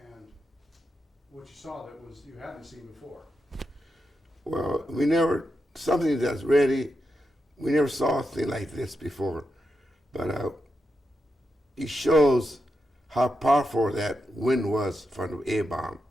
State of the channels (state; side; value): normal; both; correlation 0.86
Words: and what you saw that was you hadn't seen before. Well, we never, something that's ready, we never saw a thing like this before. But it shows how powerful that wind was from the A-bomb,